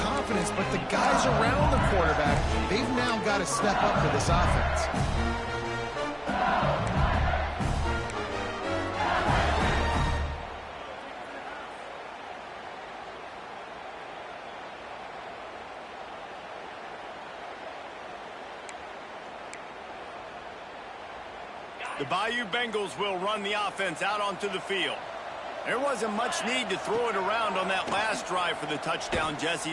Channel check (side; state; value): both; identical; correlation 1.00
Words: but the guys around the quarterback, they've now got to step up for this offense. The Bayou Bengals will run the offense out onto the field. There wasn't much need to throw it around on that last drive for the touchdown, Jesse.